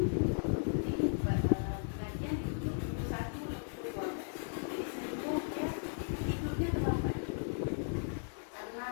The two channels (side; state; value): right; silent; digital silence